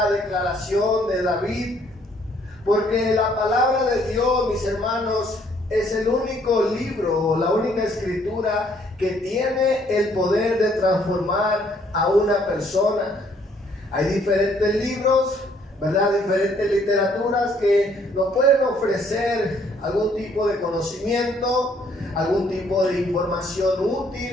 declaración de David, porque la palabra de Dios, mis hermanos, es el único libro, la única escritura que tiene el poder de transformar a una persona. Hay diferentes libros, ¿verdad? Diferentes literaturas que nos pueden ofrecer algún tipo de conocimiento, algún tipo de información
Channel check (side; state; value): both; normal; correlation 0.65